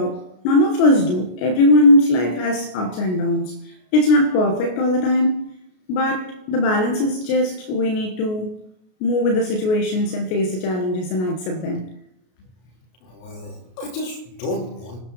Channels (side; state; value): right; late; 33 ms